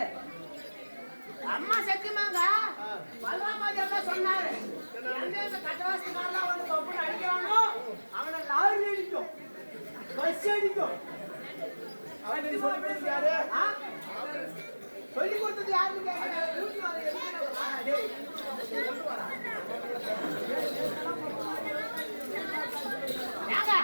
அம்மா சத்தியமாங்க பலராமாதேர் தான் சொன்னாரு. எந்த கட்டவாசக்காரெல்லாம் வந்து கப்புன்னு அடிக்கிறானோ அவனை லாரி அடிக்கும், பஸ் அடிக்கும். சொல்லி கொடுத்தது யாருன்னு கேட்கிறேன்.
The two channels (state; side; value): inverted; both; correlation -1.00